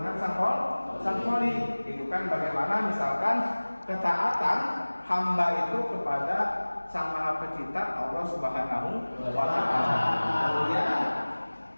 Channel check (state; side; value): inverted; both; correlation -1.00